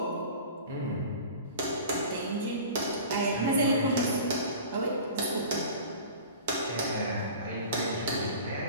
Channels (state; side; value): inverted; both; correlation -0.39